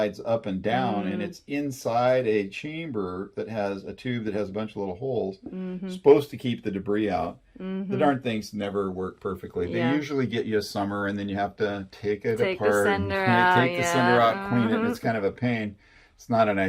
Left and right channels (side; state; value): both; identical; correlation 1.00